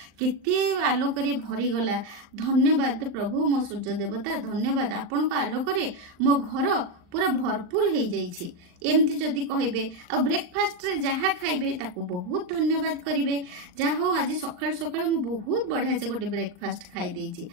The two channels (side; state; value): left; late; 39 ms